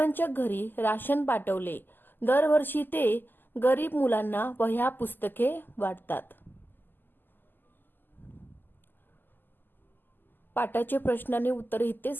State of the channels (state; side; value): late; right; 0.091 ms